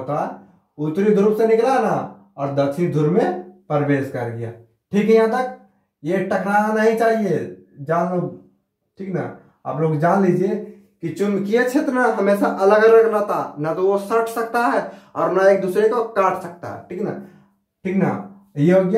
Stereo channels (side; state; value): both; identical; correlation 1.00